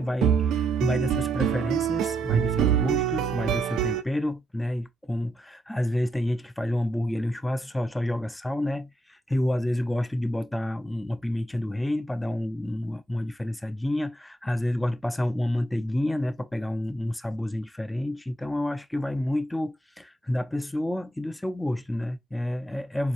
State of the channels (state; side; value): normal; both; correlation 0.79